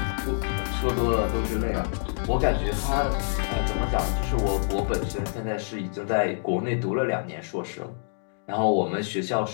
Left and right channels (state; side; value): silent; right; digital silence